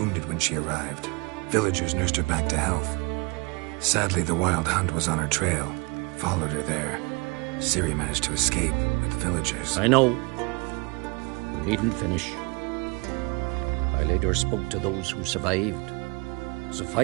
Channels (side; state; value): left; quieter; 28.9 dB